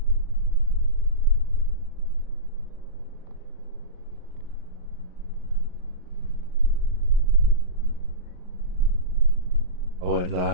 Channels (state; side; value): late; left; 39 ms